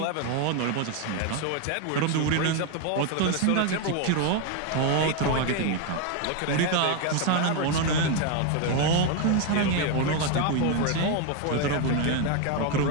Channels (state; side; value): different; both; correlation 0.01